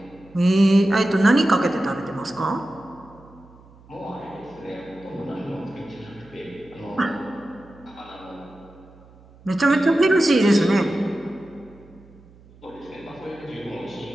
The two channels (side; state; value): right; noise; hum, 25 dB below the sound